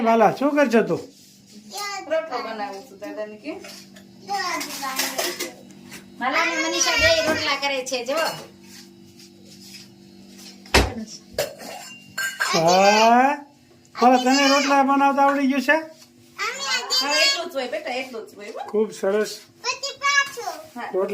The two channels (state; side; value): identical; both; correlation 1.00